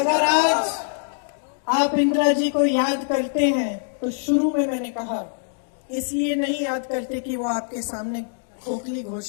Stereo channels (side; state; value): right; silent; digital silence